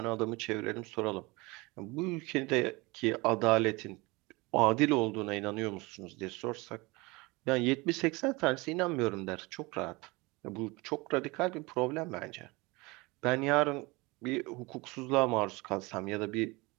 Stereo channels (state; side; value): quieter; left; 24.4 dB